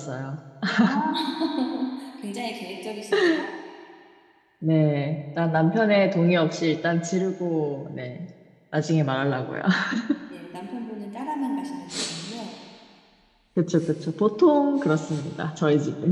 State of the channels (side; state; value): both; identical; correlation 1.00